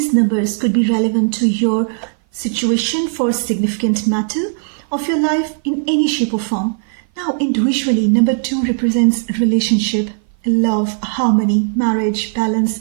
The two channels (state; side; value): silent; left; 57 dB below the other